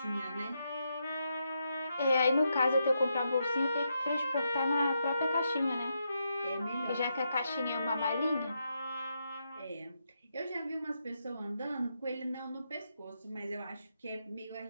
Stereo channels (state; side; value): inverted; both; correlation -0.82